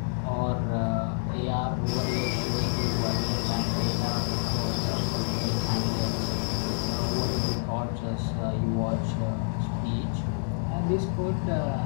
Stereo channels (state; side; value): silent; right; digital silence